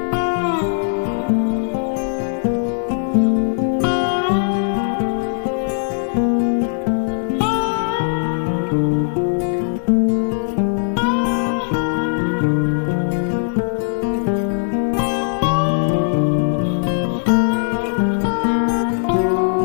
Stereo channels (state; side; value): silent; right; digital silence